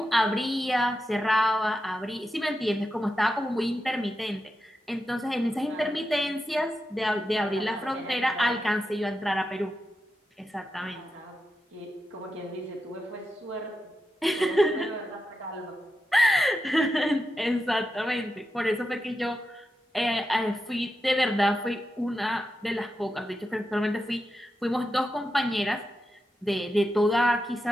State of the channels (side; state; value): both; normal; correlation 0.88